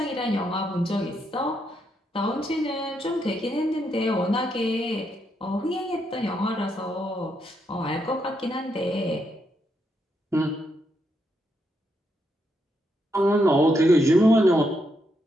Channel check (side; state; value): both; normal; correlation 0.79